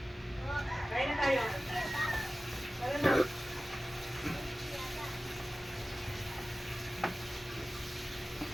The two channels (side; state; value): both; normal; correlation 0.96